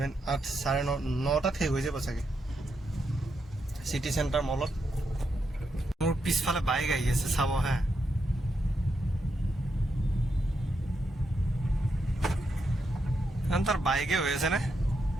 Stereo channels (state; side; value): normal; both; correlation 0.82